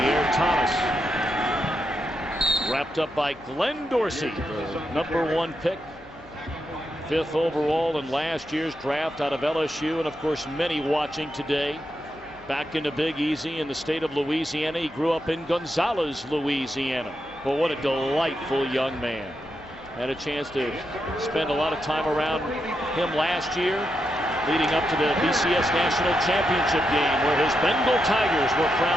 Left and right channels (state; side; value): noise; left; hum, 27 dB below the sound